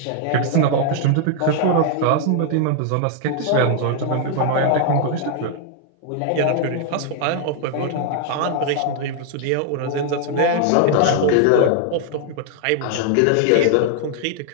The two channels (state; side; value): different; both; correlation 0.00